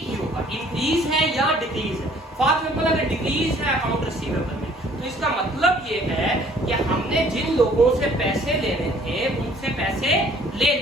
ही होगा, इंक्रीज है या डिक्रीज है। फॉर एग्जांपल अगर डिक्रीज है अकाउंट रिसीवेबल में, तो इसका मतलब ये है कि हमने जिन लोगों से पैसे लेने थे उनसे पैसे ले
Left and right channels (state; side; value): normal; both; correlation 0.57